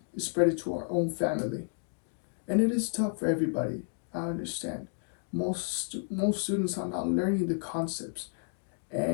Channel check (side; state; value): right; silent; 57 dB below the other